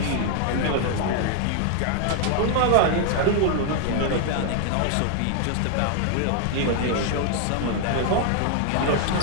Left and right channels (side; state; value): both; different; correlation 0.00